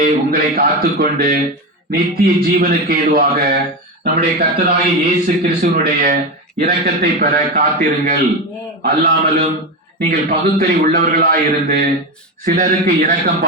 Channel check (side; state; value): both; normal; correlation 0.17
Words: உங்களை காத்துக்கொண்டு நித்திய ஜீவனுக்கு ஏதுவாக நம்முடைய கர்த்தராகிய இயேசு கிறிஸ்துவனுடைய இரக்கத்தை பெற காத்திருங்கள். அல்லாமலும் நீங்கள் பகுத்தறி உள்ளவர்களாயிருந்து சிலருக்கு இரக்கம்